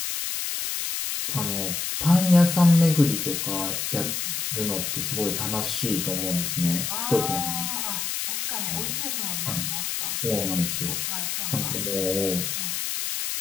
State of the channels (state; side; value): noise; left; hiss, 2 dB below the sound